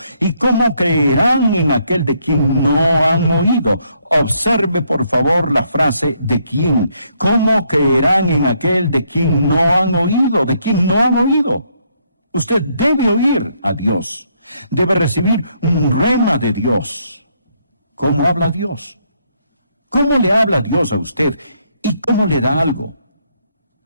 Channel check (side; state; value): both; inverted; correlation -0.72